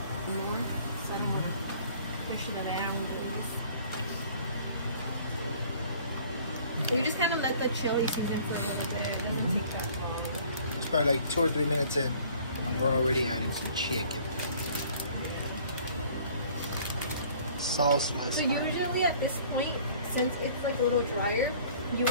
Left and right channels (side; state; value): both; inverted; correlation -0.53